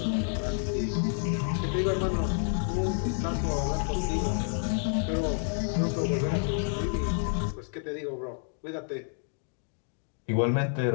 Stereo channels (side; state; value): right; silent; 57 dB below the other